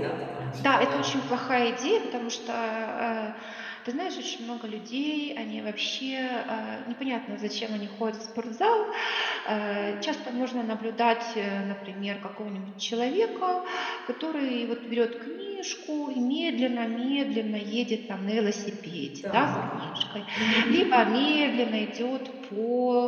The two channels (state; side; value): identical; both; correlation 1.00